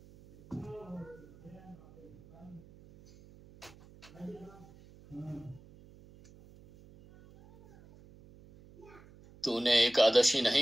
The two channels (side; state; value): right; noise; hum, 23 dB below the sound